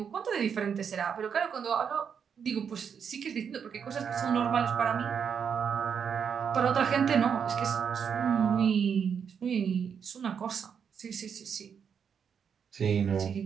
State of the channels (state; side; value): quieter; left; 7.2 dB